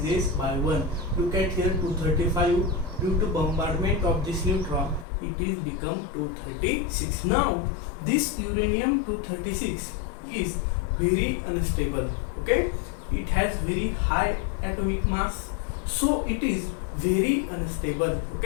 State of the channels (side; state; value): right; drops out; at 5.1 s